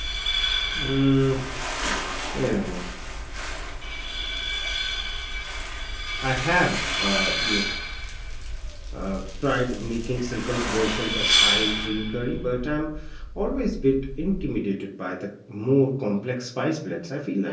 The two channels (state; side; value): identical; both; correlation 1.00